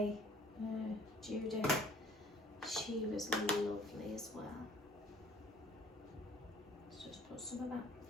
Judith. She was lovely as well. Let's just put some of that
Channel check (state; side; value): normal; both; correlation 0.55